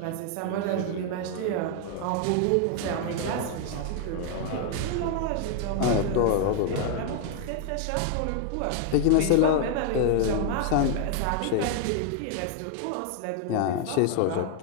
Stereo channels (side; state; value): both; different; correlation 0.00